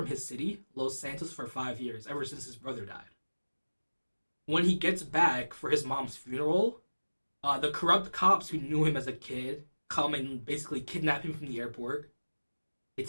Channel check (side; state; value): both; inverted; correlation -1.00